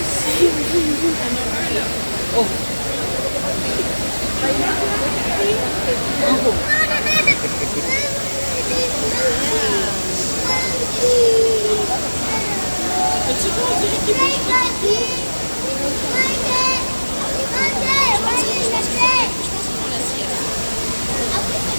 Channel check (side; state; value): both; inverted; correlation -1.00